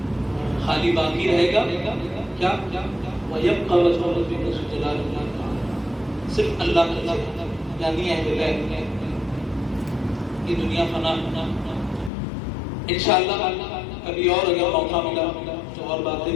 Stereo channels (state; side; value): drops out; right; at 12.1 s